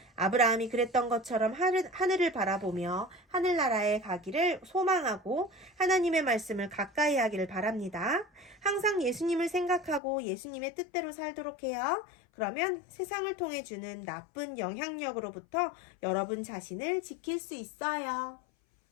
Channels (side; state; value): right; drops out; at 10.0 s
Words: 아브라함이 그랬던 것처럼 하늘을 바라보며 하늘나라에 가기를 소망하고 하나님의 말씀을 가까이 하기를 바랍니다. 항상 예수님을 생각하고 예수님의 뜻대로 살도록 해요. 그러면 세상을 통해 주는 나쁜 영향력으로부터 여러분 자신을 지킬 수 있어요.